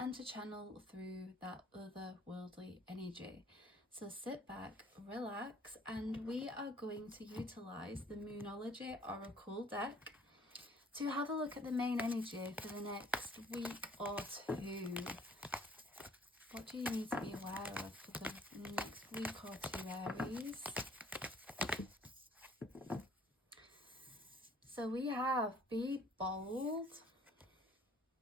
to channel through that otherworldly energy. So sit back, relax, and we are going to utilize the Moonology Oracle deck to have a look at the main energy for the next week or two. What do you need to be aware of for the next week or two, Aries? So we have be bold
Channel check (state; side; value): normal; both; correlation 0.57